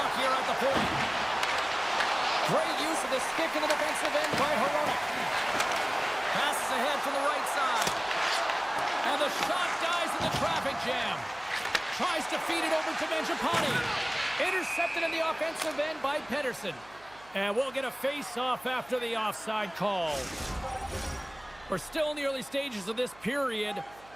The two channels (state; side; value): noise; right; hum, 25 dB below the sound